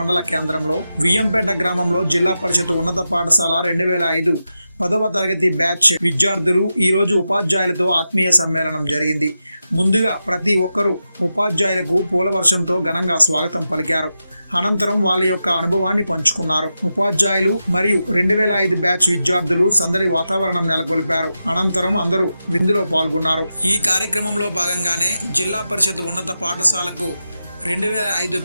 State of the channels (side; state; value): both; inverted; correlation -0.90